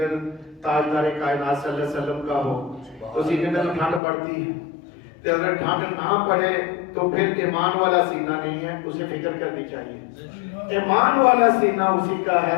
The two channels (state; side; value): drops out; right; at 4.0 s